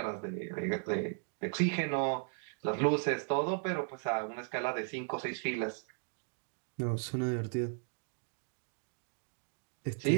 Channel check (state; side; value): silent; left; 54 dB below the other